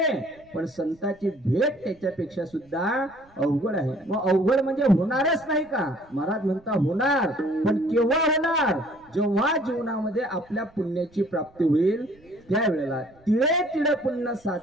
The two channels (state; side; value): noise; right; rumble, 29 dB below the sound